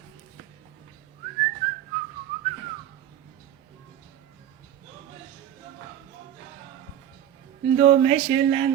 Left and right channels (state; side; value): quieter; left; 11.0 dB